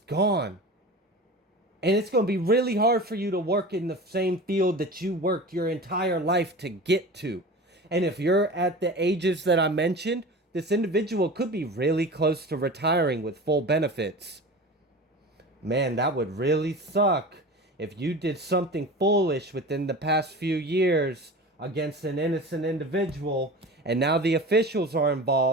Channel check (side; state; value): both; normal; correlation 0.34